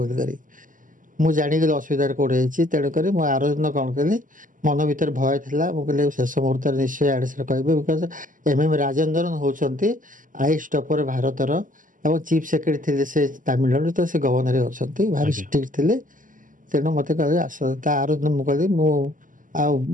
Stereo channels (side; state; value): left; late; 0.38 ms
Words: ବୋଲିକରି। ମୁଁ ଜାଣିଗଲି ଅସୁବିଧାରେ କେଉଁଠି ହେଇଛି। ତେଣୁକରି ମୁଁ ଆର ଦିନ କ'ଣ କଲି, ମନ ଭିତରେ ଭୟ ଥିଲା। ମୁଁ କହିଲି ଶେଷ ମୁହୂର୍ତ୍ତରେ ନିଶ୍ଚୟ ଆଡ଼େ ସାଡ଼େ କହିବେ, ବିକଜ MM ରାଜେନ୍ଦ୍ରନ୍ ହେଉଛନ୍ତି ଆଇଏଏସ୍ ଟପର ଭାରତର ଏବଂ ଚିଫ୍ ସେକ୍ରେଟାରୀ ଥିଲେ ସେ ତାମିଲନାଡୁ, ତ ସେ ଗଭର୍ଣ୍ଣର ଅଛନ୍ତି, ଭାରି ଷ୍ଟ୍ରିକ୍ଟ ଥିଲେ। ତେଣୁ ମୋତେ କହିଲେ ଆସ। ତା ଆର ଦିନ ମୁଁ କହିଲି